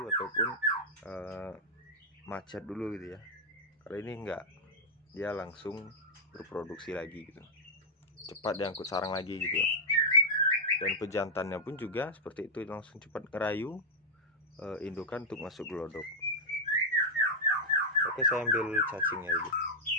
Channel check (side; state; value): both; normal; correlation -0.04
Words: ataupun macet dulu gitu ya. Kalau ini enggak, dia langsung berproduksi lagi gitu, cepat diangkut sarang lagi gitu. Dan pejantannya pun juga seperti itu, langsung cepat ngerayu indukan untuk masuk gelodok. Oke, saya ambil cacingnya dulu.